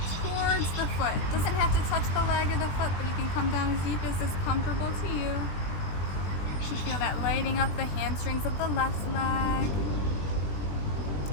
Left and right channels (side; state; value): right; late; 20 ms